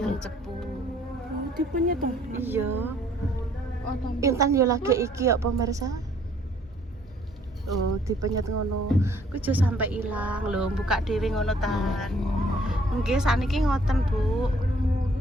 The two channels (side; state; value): both; normal; correlation 0.61